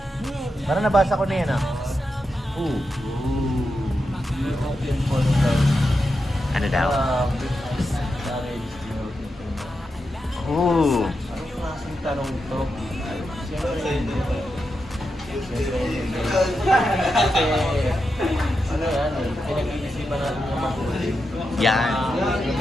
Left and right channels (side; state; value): both; normal; correlation 0.87